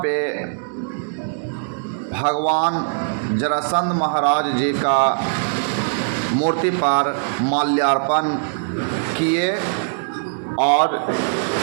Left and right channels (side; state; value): left; silent; digital silence